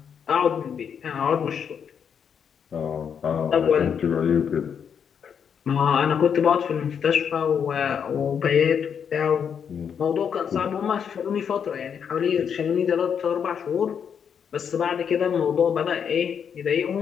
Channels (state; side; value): quieter; right; 7.5 dB